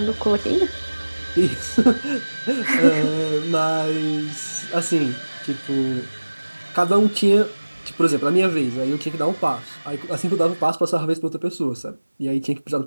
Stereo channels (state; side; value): inverted; both; correlation -1.00